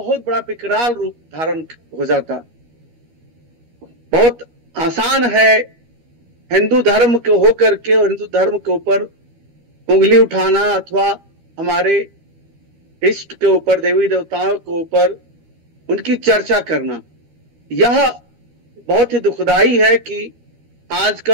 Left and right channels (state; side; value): late; left; 13 ms